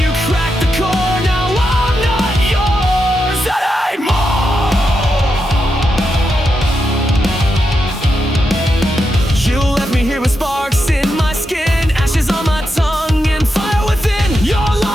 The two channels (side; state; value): both; normal; correlation 0.86